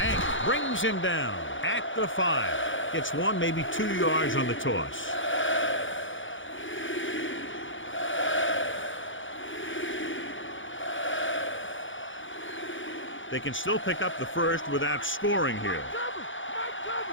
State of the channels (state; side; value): late; right; 0.56 ms